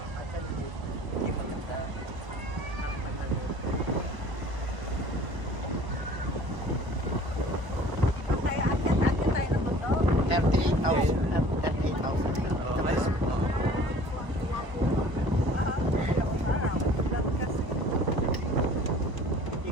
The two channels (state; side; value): late; left; 1.0 ms